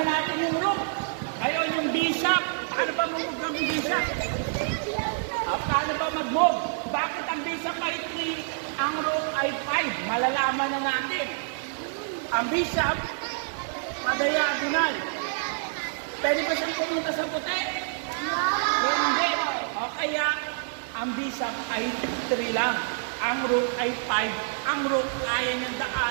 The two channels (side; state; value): left; silent; digital silence